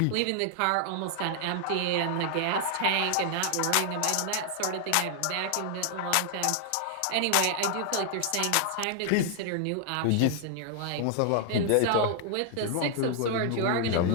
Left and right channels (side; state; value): both; different; correlation 0.00